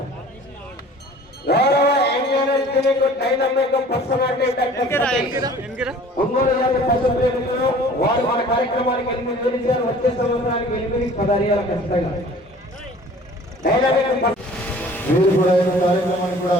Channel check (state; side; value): normal; both; correlation 0.48